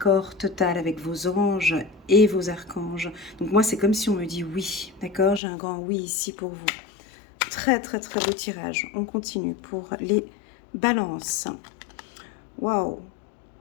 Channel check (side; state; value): right; drops out; at 5.4 s